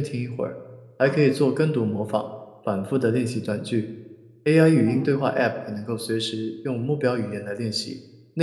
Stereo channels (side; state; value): both; identical; correlation 1.00